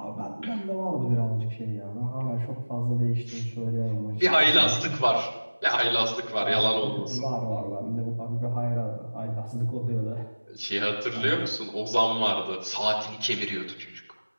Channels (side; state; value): both; inverted; correlation -1.00